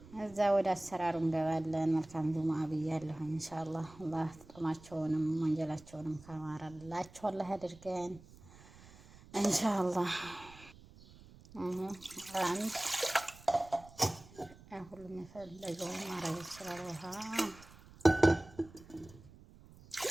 እዛ ወደ አሰራሩ እንገባለን። መልካም ጁሙአ ብያለሁ። ኢንሻአላህ አላህ ጥማቸውንም ወንጀላቸውንም ካማረላቸው አላህ ያድርገን ኢንሻአላህ። አንድ ሁሉም የፈለገውን ማድረግ ይችላል። ውሃ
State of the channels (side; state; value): right; noise; rumble, 21 dB below the sound